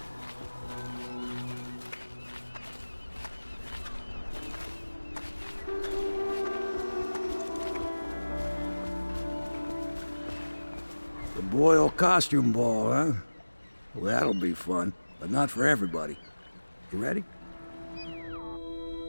The Boyle costume ball, huh? Well, that'll be fun, but not for everybody. You ready?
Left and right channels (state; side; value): inverted; both; correlation -1.00